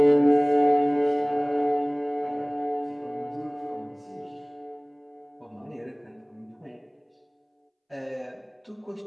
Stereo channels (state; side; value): identical; both; correlation 1.00